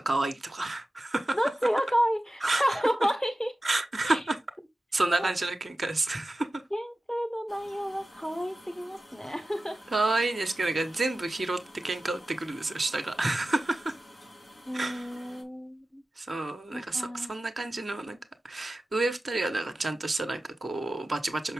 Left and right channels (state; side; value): normal; both; correlation 0.95